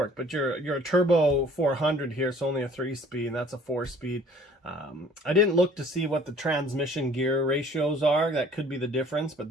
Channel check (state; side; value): normal; both; correlation 0.52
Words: But you're a turbo 400 here, so only a 3-speed, and that's a 4-speed. I didn't look to see what the transmission gear ratios are. That could be the difference, but